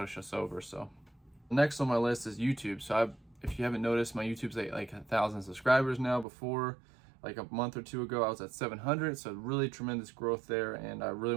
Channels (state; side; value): drops out; left; at 6.2 s